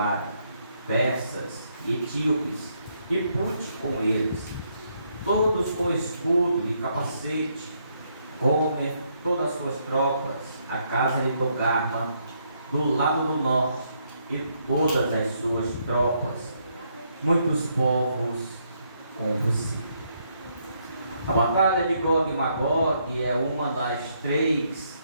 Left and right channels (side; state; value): both; inverted; correlation -0.74